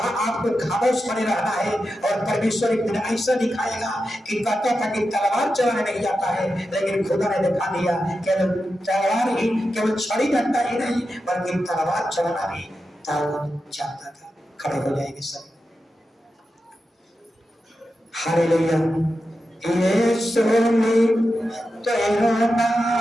आपको खामोश बने रहना है। और परमेश्वर एक दिन ऐसा दिखाएगा कि कहता था कि तलवार चलाने नहीं आता है, लेकिन खुदा ने दिखा दिया केवल तलवार ही, केवल छड़ी डंडा ही नहीं, बल्कि तलवार चलाना भी दाऊद जानता था। खड़े हो जाएंगे सब। हालेलुया। यीशु ने तेरा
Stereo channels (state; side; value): normal; both; correlation 0.90